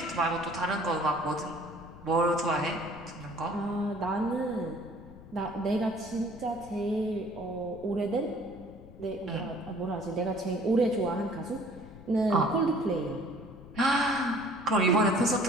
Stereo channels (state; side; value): noise; left; rumble, 18 dB below the sound